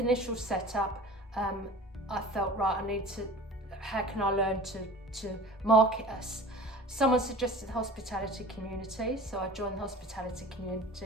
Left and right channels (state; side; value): normal; both; correlation 0.40